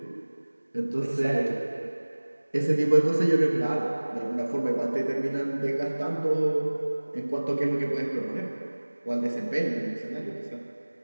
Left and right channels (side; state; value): both; inverted; correlation -1.00